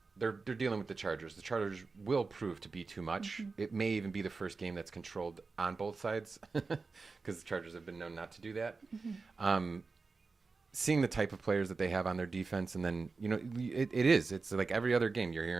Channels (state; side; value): quieter; left; 4.2 dB